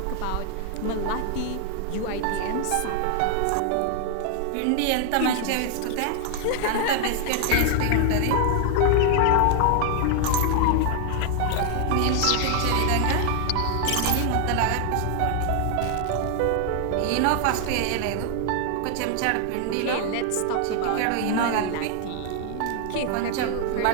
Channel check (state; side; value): different; both; correlation 0.00